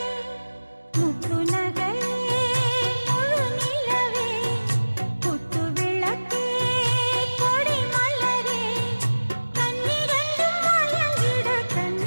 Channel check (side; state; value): both; inverted; correlation -1.00